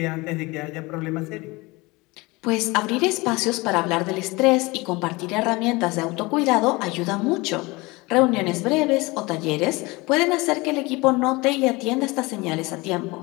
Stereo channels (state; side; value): quieter; right; 23.6 dB